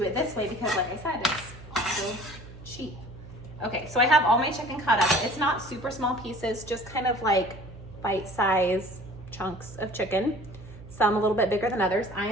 it this way because like I said, it's also cheap. Okay, so I have all my chicken cut up. It's not super small pieces, just kind of like bite-size chunks of chicken. Some a little bit bigger than others. I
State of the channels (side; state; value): right; noise; hum, 17 dB below the sound